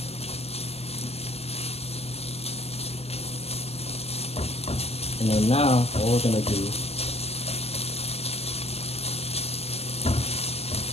And then now, all we're gonna do,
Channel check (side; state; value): right; late; 0.29 ms